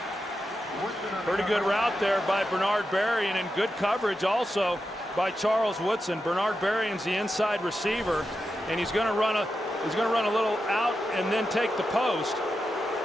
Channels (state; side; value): normal; both; correlation 0.89